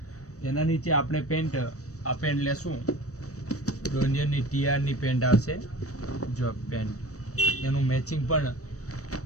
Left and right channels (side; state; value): right; late; 0.66 ms